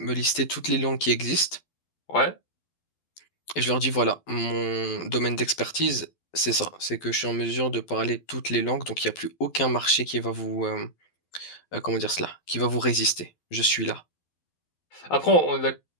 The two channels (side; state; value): right; late; 12 ms